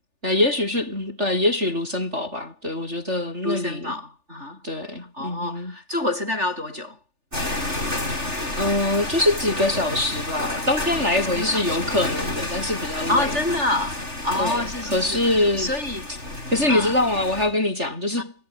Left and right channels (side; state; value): left; late; 3.4 ms